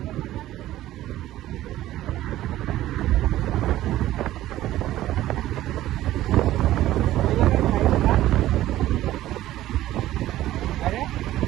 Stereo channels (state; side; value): quieter; left; 14.5 dB